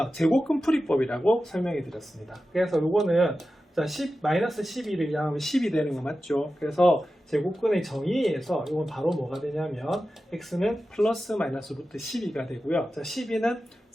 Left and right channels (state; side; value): normal; both; correlation 0.93